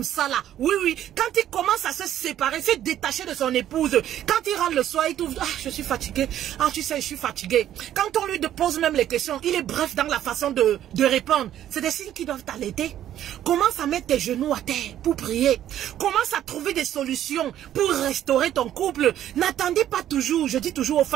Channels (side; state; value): left; quieter; 11.6 dB